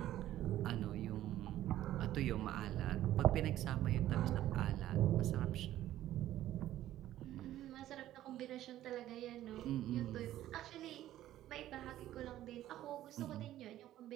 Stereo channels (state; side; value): quieter; left; 13.4 dB